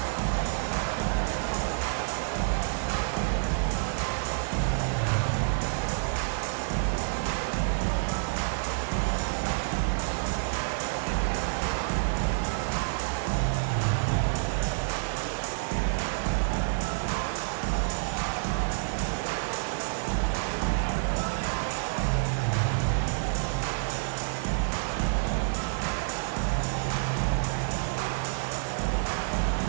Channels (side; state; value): left; silent; 58 dB below the other